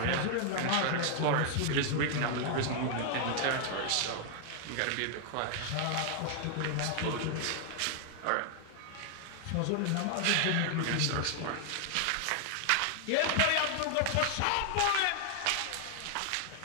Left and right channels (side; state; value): both; different; correlation 0.00